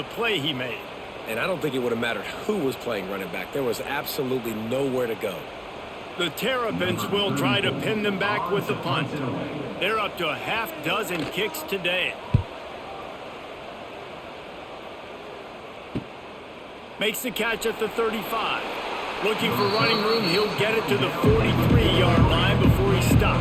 play he made. And I don't think it would have mattered who was playing running back. There was absolutely nowhere to go. The Terrapins will try to pin them back with the punt. They're up to a half-dozen kicks today. Makes the catch at the 35. Looking for running room, he'll get it to the 43-yard line before he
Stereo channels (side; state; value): both; identical; correlation 1.00